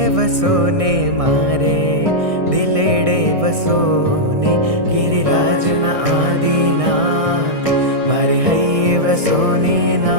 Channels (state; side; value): late; left; 1.6 ms